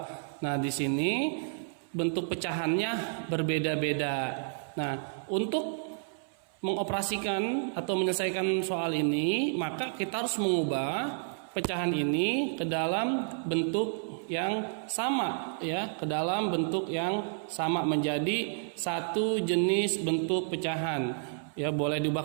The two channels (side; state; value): left; silent; 57 dB below the other